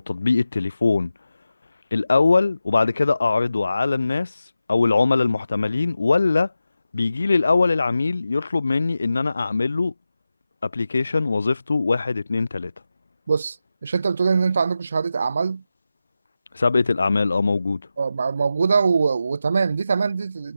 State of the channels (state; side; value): inverted; both; correlation -0.92